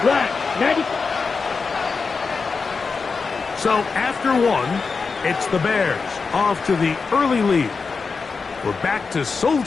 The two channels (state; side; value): quieter; right; 4.8 dB